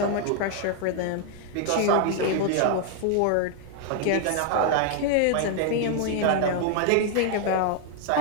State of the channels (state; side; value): different; both; correlation 0.00